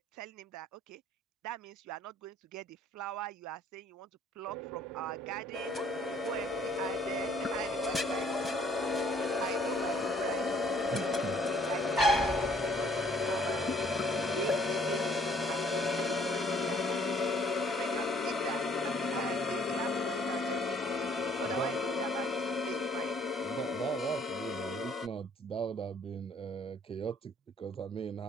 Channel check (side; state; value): both; normal; correlation 0.61